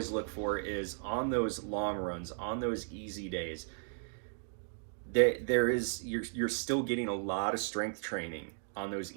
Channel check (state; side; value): silent; left; digital silence